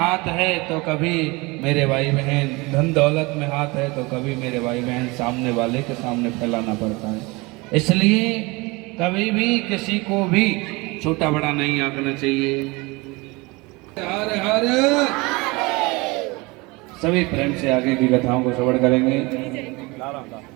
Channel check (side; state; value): left; quieter; 24.8 dB